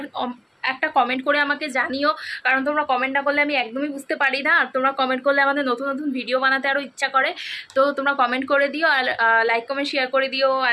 একটা কমেন্ট করে আমাকে জানিও, কারণ তোমরা কমেন্ট না করলে আমি একদমই বুঝতে পারি না, আর তোমরা কমেন্ট করলে আমাদের নতুন নতুন ভিডিও বানাতে আরও ইচ্ছা করে। তো তোমরা কমেন্ট করে দিও, আর লাইক কমেন্ট শেয়ার করে দিও।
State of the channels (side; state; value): both; identical; correlation 1.00